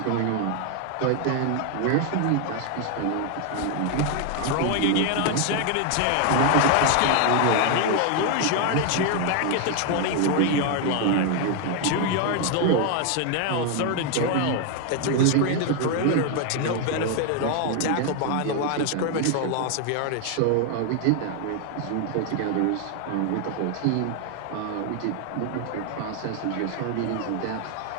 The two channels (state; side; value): different; both; correlation 0.01